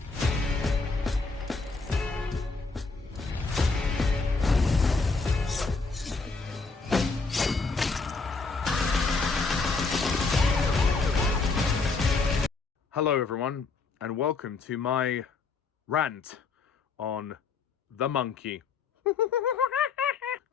Hello everyone, and welcome to my rant on The Monkey.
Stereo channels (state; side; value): quieter; right; 4.3 dB